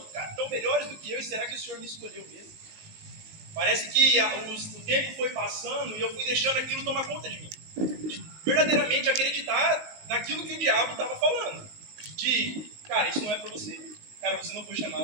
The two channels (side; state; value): left; late; 19 ms